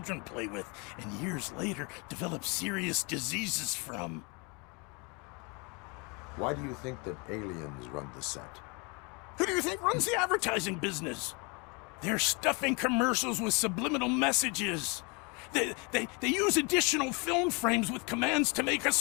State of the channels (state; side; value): quieter; right; 30.9 dB